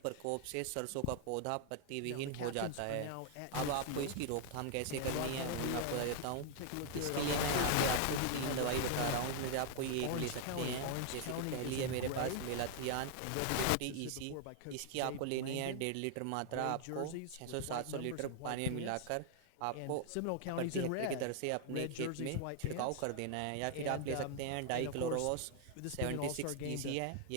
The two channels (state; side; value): different; both; correlation 0.00